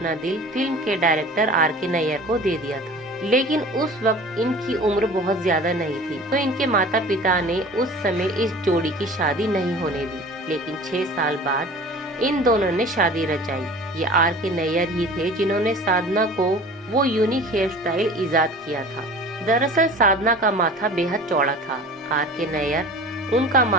दिल फिल्म के डायरेक्टर R.K. नायर को दे दिया था। लेकिन उस वक्त इनकी उम्र बहुत ज्यादा नहीं थी, तो इनके माता पिता ने उस समय इस जोड़ी की शादी नहीं होने दी। लेकिन 6 साल बाद इन दोनों ने शादी रचाई। ये R.K. नायर ही थे जिन्होंने साधना को वो यूनिक हेयर स्टाइल इजाद किया था। दरअसल साधना का माथा बेहद चौड़ा था। R.K. नायर उनका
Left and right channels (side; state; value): both; normal; correlation 0.41